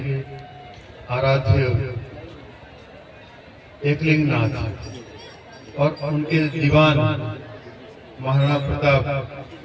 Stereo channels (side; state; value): both; identical; correlation 1.00